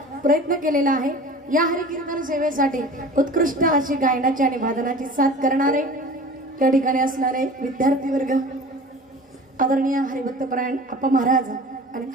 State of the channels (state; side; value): normal; both; correlation 0.40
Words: प्रयत्न केलेला आहे. या हरिकीर्तन सेवेसाठी उत्कृष्ट अशी गायनाची आणि वादनाची साथ करणारे त्या ठिकाणी असणारे विद्यार्थी वर्ग, आदरणीय हरिभक्तपरायण अप्पा महाराज आणि